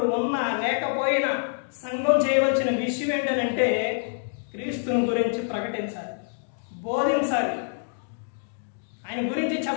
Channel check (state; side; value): silent; right; digital silence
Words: ఉన్నా లేకపోయినా సంఘం చేయవలసిన విషయం ఏంటంటే, క్రీస్తుని గురించి ప్రకటించాలి, బోధించాలి, ఆయన గురించి